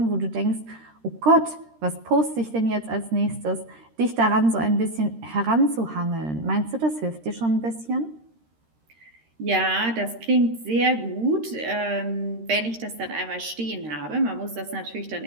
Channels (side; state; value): left; late; 13 ms